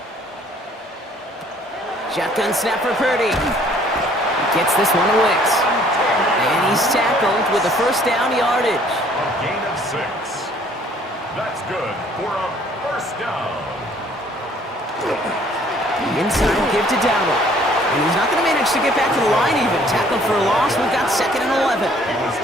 Shotgun snap for Purdy. Gets this one to Wicks. And he's tackled with a first down yardage. A gain of 6. That's good for a first down. Inside give to Dowdle. And he's not going to manage to get back to the line even. Tackled for a loss. We've got second and 11.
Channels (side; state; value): both; normal; correlation 0.59